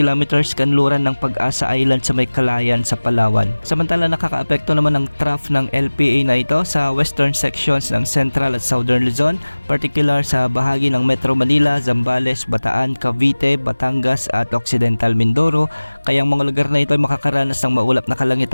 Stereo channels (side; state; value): both; inverted; correlation -1.00